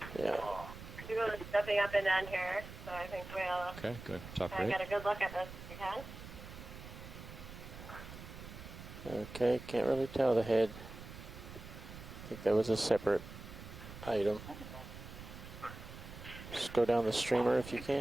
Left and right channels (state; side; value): noise; right; rumble, 13 dB below the sound